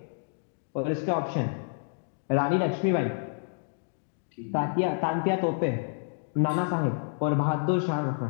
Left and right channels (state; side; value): silent; right; 59 dB below the other